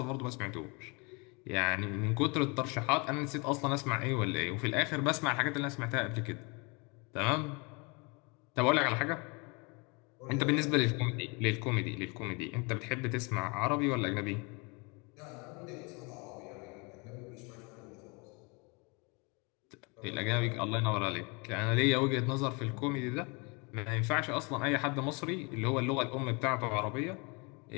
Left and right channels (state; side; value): quieter; right; 30.2 dB